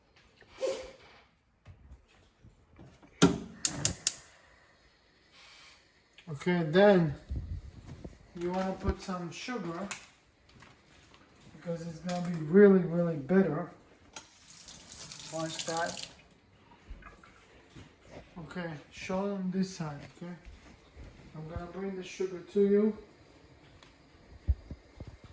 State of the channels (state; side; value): identical; both; correlation 1.00